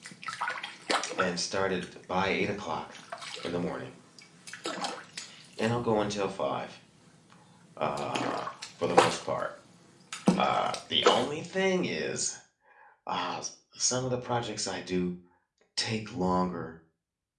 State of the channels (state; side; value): identical; both; correlation 1.00